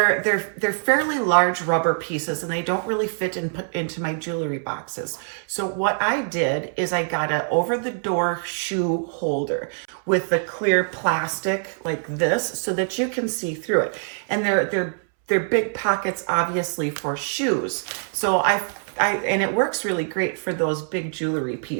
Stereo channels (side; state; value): left; silent; 63 dB below the other